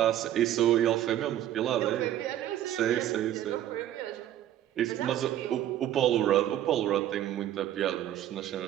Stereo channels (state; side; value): quieter; left; 12.0 dB